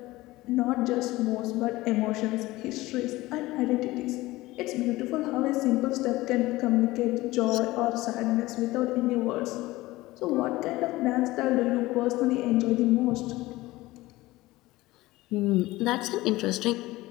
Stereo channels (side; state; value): right; quieter; 18.8 dB